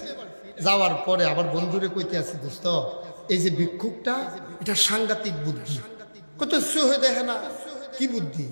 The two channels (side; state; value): both; inverted; correlation -1.00